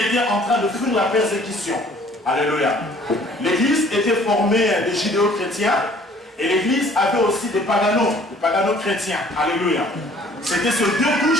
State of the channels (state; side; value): normal; both; correlation 0.56